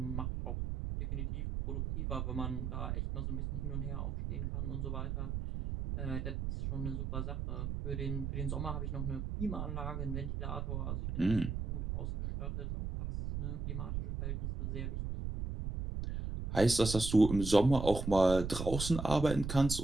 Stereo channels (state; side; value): noise; right; rumble, 3 dB below the sound